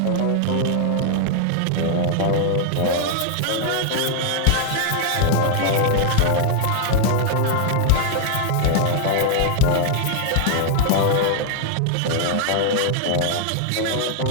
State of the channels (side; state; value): both; different; correlation -0.01